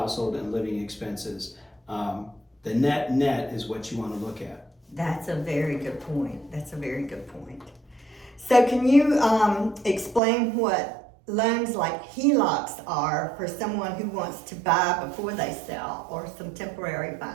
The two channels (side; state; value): left; drops out; at 10.2 s